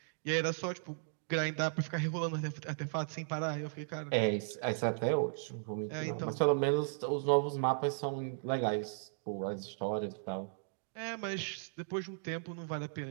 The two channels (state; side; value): silent; left; digital silence